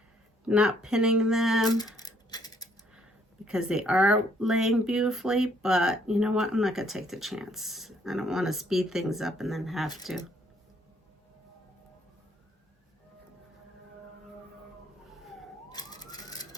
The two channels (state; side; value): normal; both; correlation 0.67